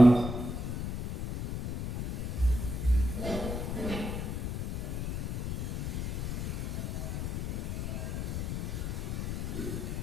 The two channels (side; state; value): left; noise; rumble, 2 dB below the sound